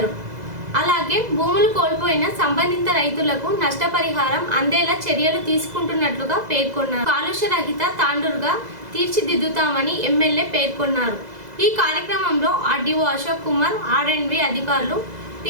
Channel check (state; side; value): late; left; 2.0 ms